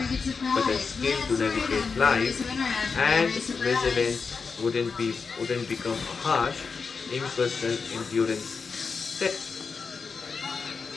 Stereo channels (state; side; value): quieter; right; 5.1 dB